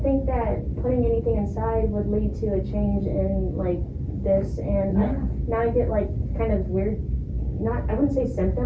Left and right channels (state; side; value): identical; both; correlation 1.00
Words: that putting anything inside would lead to a change in like this, and now I get like kind of weird, I wouldn't say